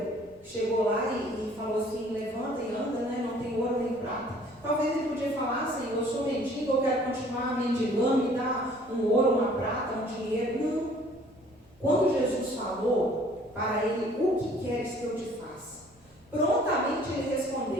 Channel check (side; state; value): both; normal; correlation 0.55